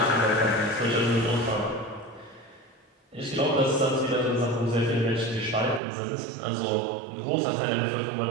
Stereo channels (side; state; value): left; drops out; at 5.8 s